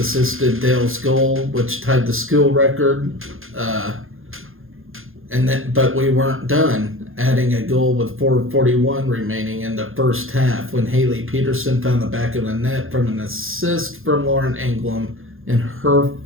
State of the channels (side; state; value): left; late; 0.60 ms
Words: Dale's goal, which tied the school record. But we weren't done, adding a goal with 4:41 remaining in the first half when Haley Peterson found the back of the net from an assist from Lauren Englum in her